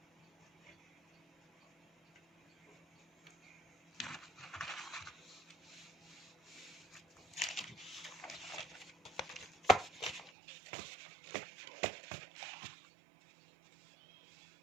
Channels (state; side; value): drops out; left; at 10.3 s